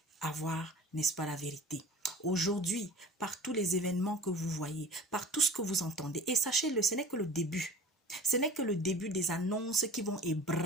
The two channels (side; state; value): both; normal; correlation 0.40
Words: avoir, n'est-ce pas, la vérité. Aujourd'hui, par tous les événements que vous voyez, par tout ce que vous entendez, et sachez-le, ce n'est que le début. Ce n'est que le début des annonces qui vont